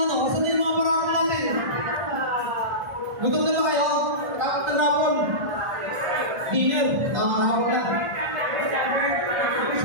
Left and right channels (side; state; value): left; late; 1.5 ms